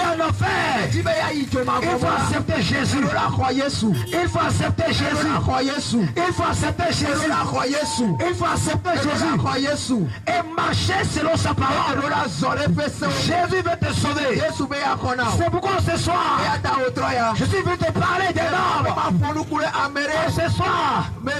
en enfer. Il faut accepter Jésus. Il faut accepter Jésus. Il faut accepter Jésus. Il faut accepter Jésus. Et marcher selon sa parole. Jésus veut te sauver. C'est pourquoi ce soir, je suis venu te parler des normes. Et ce soir,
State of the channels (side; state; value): both; identical; correlation 1.00